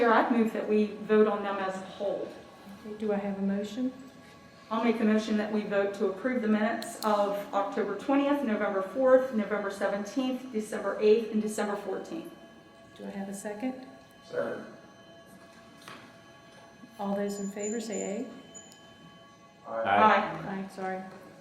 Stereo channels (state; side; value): identical; both; correlation 1.00